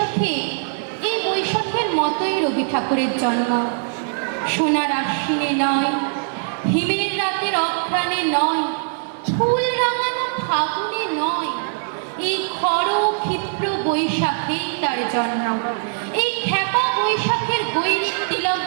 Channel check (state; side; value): silent; left; digital silence